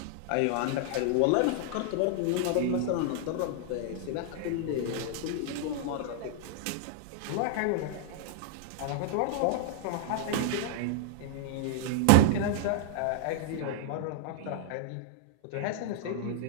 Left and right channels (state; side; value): different; both; correlation -0.01